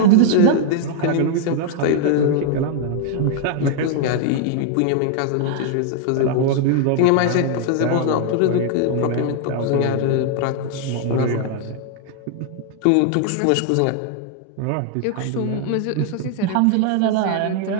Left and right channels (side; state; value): both; different; correlation 0.00